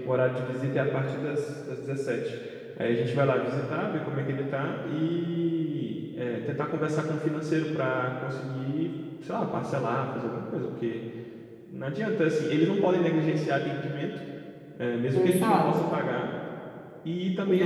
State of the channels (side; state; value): both; identical; correlation 1.00